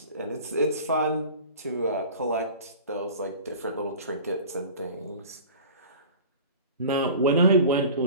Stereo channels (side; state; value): both; inverted; correlation -0.40